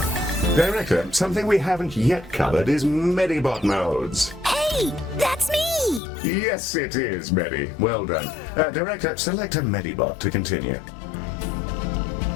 Director, something we haven't yet covered is Medibot modes. Hey, that's me! Yes, it is, Medi. Well done. Director, select a Medibot to continue.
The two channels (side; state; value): right; drops out; at 6.0 s